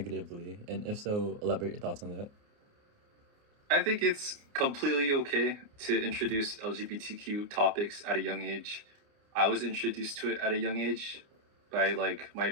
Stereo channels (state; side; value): late; left; 29 ms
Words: And if so, elaborate your thoughts on that. I think it's completely okay to introduce LGBTQ topics at a young age. I was introduced to it at a young age by like my